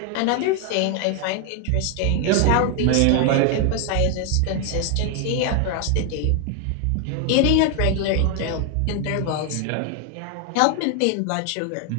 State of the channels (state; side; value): different; both; correlation 0.00